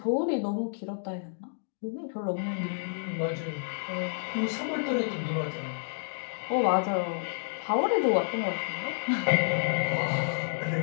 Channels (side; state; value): right; silent; digital silence